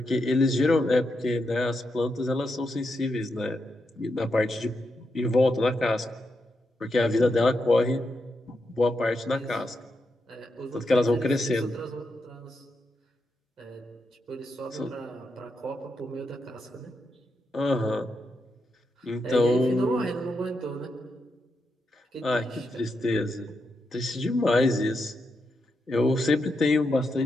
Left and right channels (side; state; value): both; normal; correlation 0.84